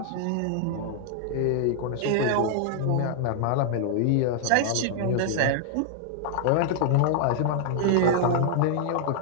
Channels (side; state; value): both; different; correlation -0.01